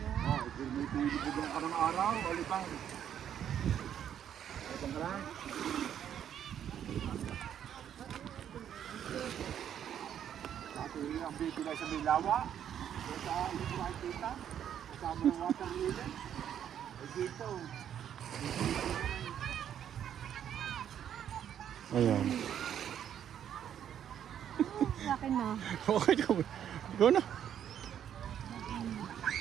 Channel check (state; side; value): quieter; left; 9.6 dB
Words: May pilibugan ka ng araw, alipang. Alipang ka lang. Dati ang bibigay sa may lawa. Sa ilibugan kita. Kasama ng water lily. Ay dito. Ayan. Sa akin na. Okay, go na.